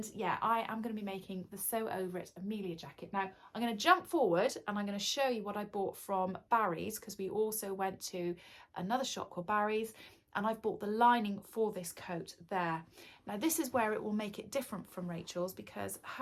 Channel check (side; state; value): both; identical; correlation 1.00